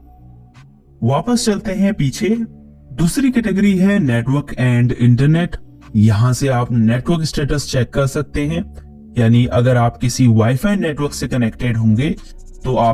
वापस चलते हैं पीछे। दूसरी कैटेगरी है नेटवर्क एंड इंटरनेट। यहां से आप नेटवर्क स्टेटस चेक कर सकते हैं, यानी अगर आप किसी वाईफाई नेटवर्क से कनेक्टेड होंगे तो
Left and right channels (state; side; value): identical; both; correlation 1.00